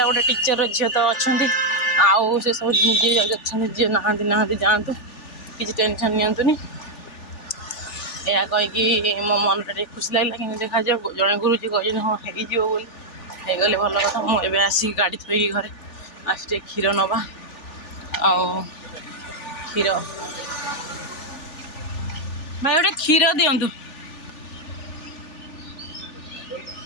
ଗୋଟେ ଟିଚର ଝିଅ ତ ଅଛନ୍ତି, ଆଉ ସେସବୁ ଯିଏ ଅଛନ୍ତି, ଯିଏ ନାହାନ୍ତି ଯାଆନ୍ତୁ, କିଛି ଟେନସନ୍ ନିଅନ୍ତୁନି। ଏହା କହିକି ମୋ ମନଟା ଟିକେ ଖୁସି ଲାଗିଲା। କିନ୍ତୁ ଦେଖାଯାଉ, ଜଣେ ଗୁରୁଜୀ କହିଛନ୍ତି ହଁ ହେଇଯିବ ବୋଲି, ହେଇଗଲେ ଭଲ କଥା। ମୁଁ ଏବେ ଆସିକି ଗାଡ଼ି ଥୋଇକି ଘରେ ଆସି ଟିକେ କ୍ଷୀର ନେବା, ଆଉ କ୍ଷୀର ଭାଇ ଗୋଟେ କ୍ଷୀର ଦିଅନ୍ତୁ।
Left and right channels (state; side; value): late; right; 3.4 ms